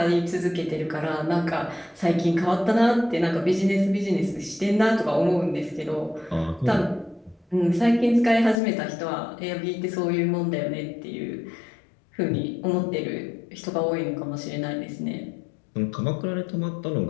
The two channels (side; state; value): right; drops out; at 8.6 s